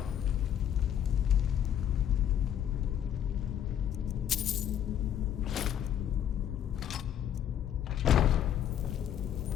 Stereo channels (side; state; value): right; quieter; 9.9 dB